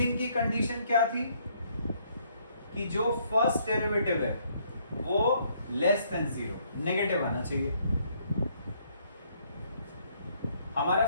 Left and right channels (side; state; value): both; inverted; correlation -0.67